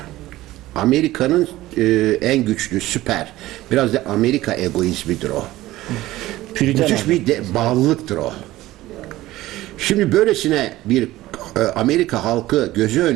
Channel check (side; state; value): left; quieter; 16.6 dB